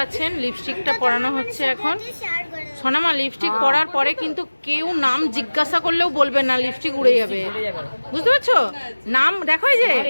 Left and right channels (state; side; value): inverted; both; correlation -1.00